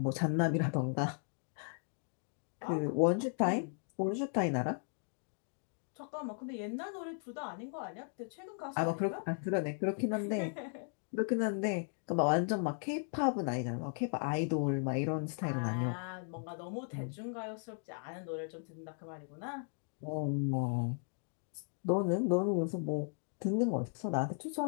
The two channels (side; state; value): right; silent; 53 dB below the other